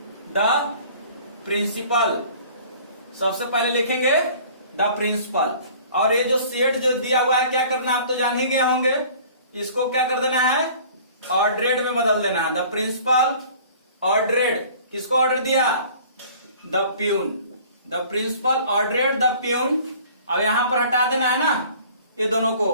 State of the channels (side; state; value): both; inverted; correlation -0.49